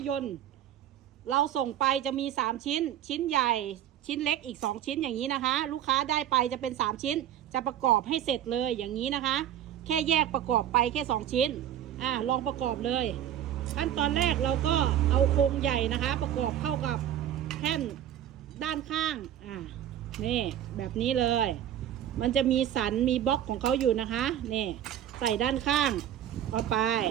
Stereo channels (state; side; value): quieter; left; 10.8 dB